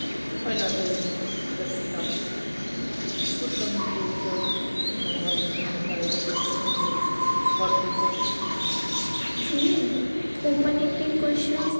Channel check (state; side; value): inverted; both; correlation -1.00